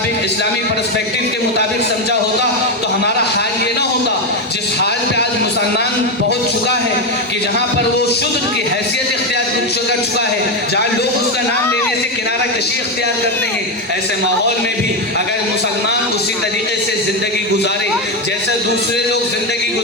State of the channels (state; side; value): normal; both; correlation 0.10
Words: اسلامی پرسپیکٹو کے مطابق سمجھا ہوتا تو ہمارا حال یہ نہ ہوتا جس حال پہ آج مسلمان پہنچ چکا ہے کہ جہاں پر وہ شدھ کی حیثیت اختیار کر چکا ہے، جہاں لوگ اس کا نام لینے سے کنارہ کشی اختیار کرتے ہیں۔ ایسے ماحول میں بھی اگر مسلمان اسی طریقے سے زندگی گزارے جیسے دوسرے لوگ زندگی